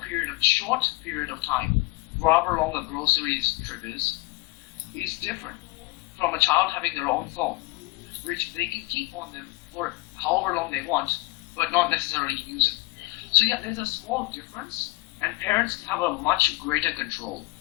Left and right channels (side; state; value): right; quieter; 23.6 dB